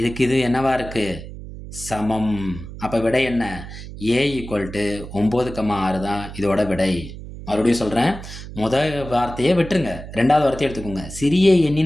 இதுக்கு இது என்னவா இருக்குது, சமம். அப்போ விடை என்ன, A = 9, 6 தான் இதோட விடை. மறுபடியும் சொல்கிறேன், முதல் வார்த்தையை விட்டுருங்க, 2வது வார்த்தையை எடுத்துக்கோங்க. சிறிய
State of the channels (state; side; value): noise; right; hum, 12 dB below the sound